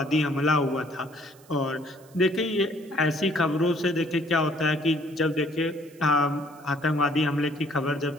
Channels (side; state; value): right; noise; hiss, 27 dB below the sound